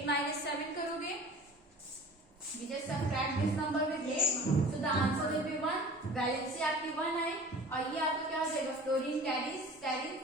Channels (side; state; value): both; normal; correlation 0.42